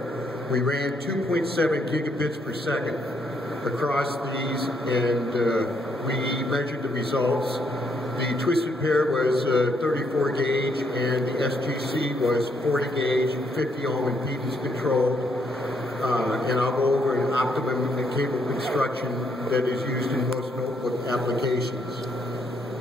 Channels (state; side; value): normal; both; correlation 0.73